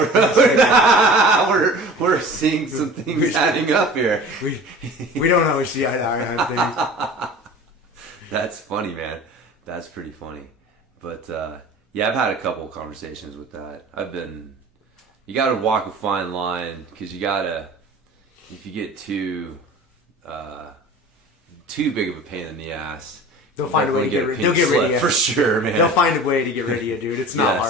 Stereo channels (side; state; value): both; normal; correlation 0.40